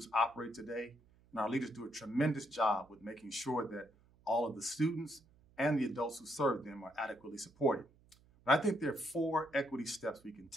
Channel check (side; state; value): right; noise; hum, 29 dB below the sound